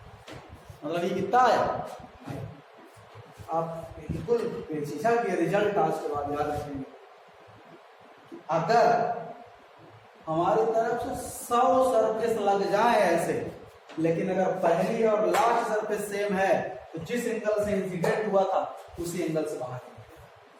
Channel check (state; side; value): identical; both; correlation 1.00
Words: मतलब ये कितना आया, आप बिल्कुल शीशा के रिजल्ट आज के बाद याद रखेंगे। अगर हमारी तरफ से 100 सरफेस लग जाए ऐसे, लेकिन अगर पहली और लास्ट सरफेस सेम है तो जिस एंगल से इंसिडेंट हुआ था उसी एंगल से बाहर